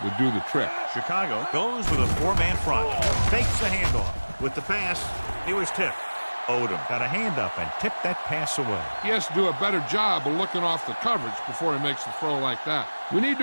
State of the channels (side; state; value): both; inverted; correlation -1.00